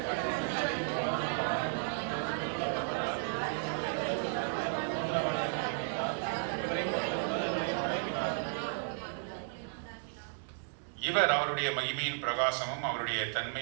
இவர் அவருடைய மகிமையின் பிரகாசமும் அவருடைய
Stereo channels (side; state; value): left; silent; digital silence